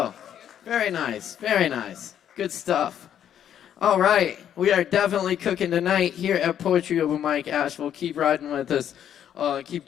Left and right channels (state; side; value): quieter; right; 9.8 dB